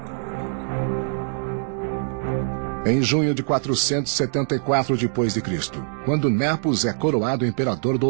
Em junho de 474 d.C., quando Nepos é coroado imperador do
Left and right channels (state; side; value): silent; left; digital silence